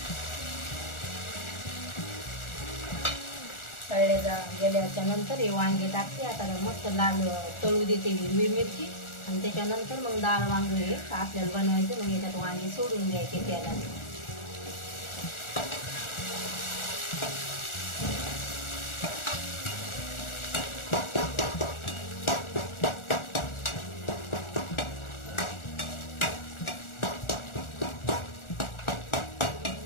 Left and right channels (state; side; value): late; right; 1.4 ms